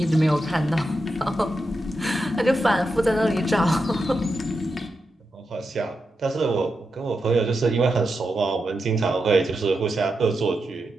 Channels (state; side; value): normal; both; correlation 0.88